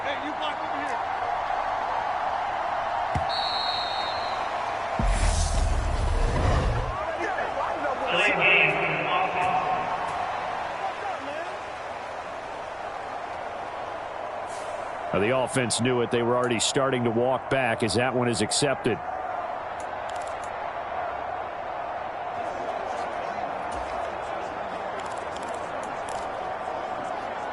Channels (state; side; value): identical; both; correlation 1.00